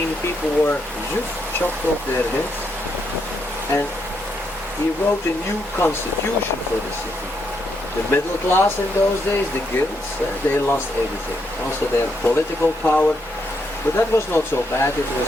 people were just chopped off their heads. And he wrote a new constitution for the city. The middle class in those days, the guilds, they lost everything. Also their political power. But that was not so bad, it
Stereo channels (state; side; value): normal; both; correlation 0.78